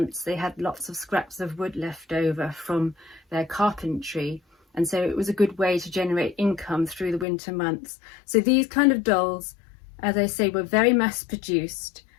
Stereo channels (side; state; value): right; drops out; at 7.2 s